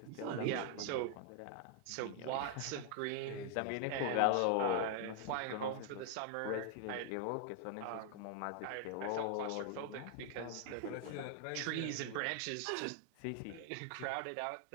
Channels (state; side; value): different; both; correlation 0.00